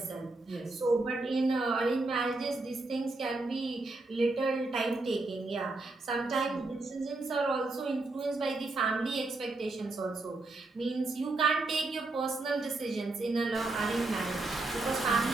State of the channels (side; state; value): left; quieter; 3.2 dB